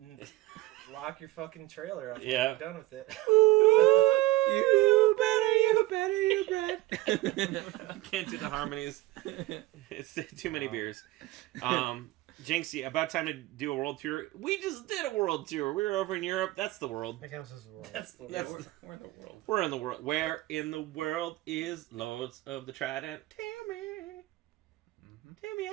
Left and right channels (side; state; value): left; quieter; 18.1 dB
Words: Lock your fucking trailer up. Yeah. I'm done with it. You better. Can't do the harmonies. It's too many beers. Jinxie, about time to do a world tour. We just did a world tour. We were over in Europe. That's the world. That counts as the world. That's the That's word. We're in the world. We're in the world. Where in the world is Lords of the Trident? Tammy